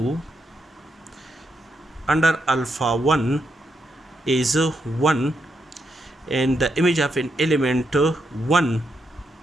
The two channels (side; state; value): both; normal; correlation 0.81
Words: under alpha 1 is 1, and the image of an element 1,